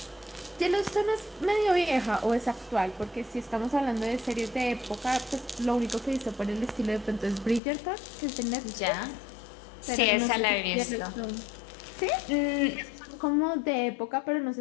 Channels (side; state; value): right; drops out; at 7.6 s